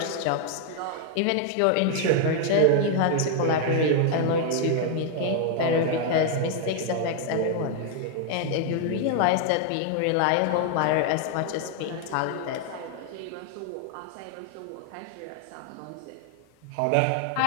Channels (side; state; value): both; different; correlation 0.00